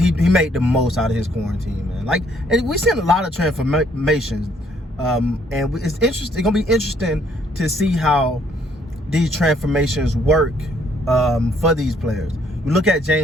made the most out of his quarantine, man. Like, and we've seen a lot of transformations, and it's interesting. It's gonna be interesting to see how these transformations work for these players. You look at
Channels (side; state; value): both; normal; correlation 0.66